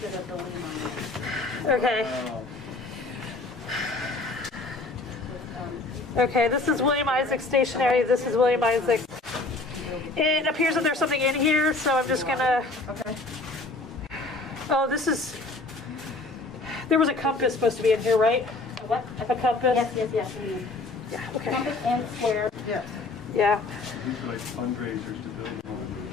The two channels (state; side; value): quieter; right; 3.3 dB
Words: Okay. Okay, this is William Isaac stationery. This is William Isaac. It appears that there's something in here, so I'm just gonna. Okay. Oh, this is. There was a compass supposed to be in here, right? What? A compass? Yes. Yeah, okay. Compass and square. Yes. Yeah. These are like fundraisers to build one.